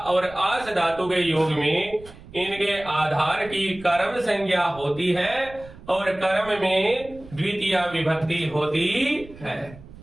और आस धातु के योग में इनके आधार की कर्म संज्ञा होती है और कर्म में द्वितीय विभक्ति होती है।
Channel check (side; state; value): right; noise; rumble, 19 dB below the sound